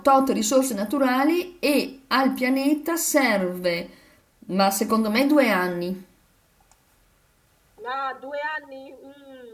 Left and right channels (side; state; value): both; identical; correlation 1.00